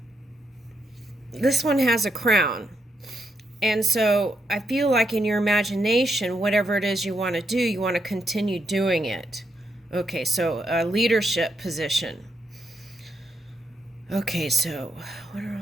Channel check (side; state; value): both; normal; correlation 0.80